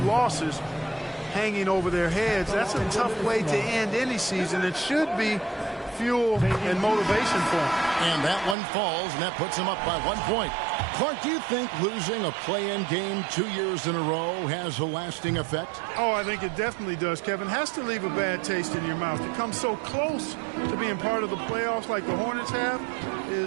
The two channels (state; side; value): drops out; left; at 8.6 s